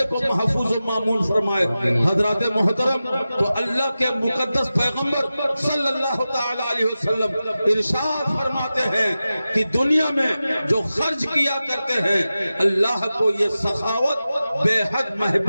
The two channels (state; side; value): inverted; both; correlation -0.94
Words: کو محفوظ و معمول فرمائے۔ حضرات محترم، تو اللہ کے مقدس پیغمبر صلی اللہ تعالی علیہ وسلم ارشاد فرماتے ہیں کہ دنیا میں جو خرچ کیا کرتے ہیں اللہ کو یہ سخاوت بے حد